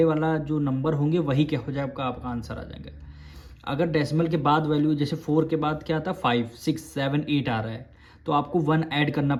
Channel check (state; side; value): identical; both; correlation 1.00